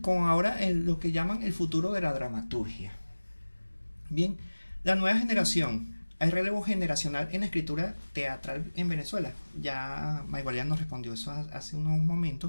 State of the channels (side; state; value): both; inverted; correlation -1.00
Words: ahora lo que llaman el futuro de la dramaturgia. Bien, la nueva generación, hay relevo generacional en la escritura teatral en Venezuela. Ya Maybalian nos respondió eso hace unos